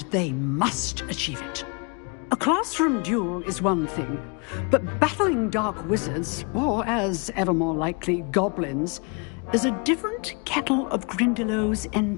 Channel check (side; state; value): right; quieter; 33.9 dB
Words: they must achieve it. A classroom duel is one thing, but battling dark wizards, or as ever more likely, goblins, is a different kettle of Grindylows